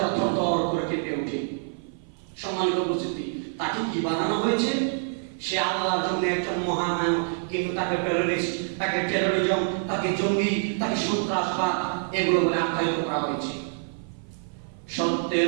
থরথর করে কেঁপে ওঠে। সম্মানিত উপস্থিতি, তাকে কি বানানো হয়েছে? সে আল্লাহর জন্য একজন মহানায়ক, কিন্তু তাকে টেররিস্ট, তাকে টেররিজম, তাকে জঙ্গি, তাকে সন্ত্রাসবাদ এগুলো বলে আখ্যায়িত করা হয়েছে।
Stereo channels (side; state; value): left; silent; 55 dB below the other